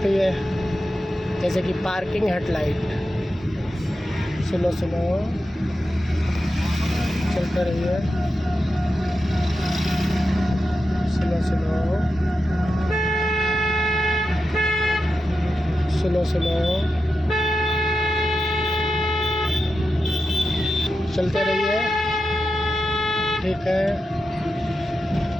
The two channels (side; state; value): both; normal; correlation 0.89